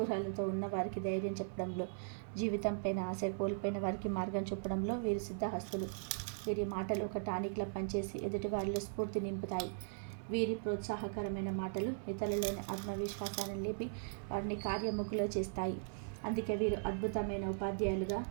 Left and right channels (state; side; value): silent; left; 52 dB below the other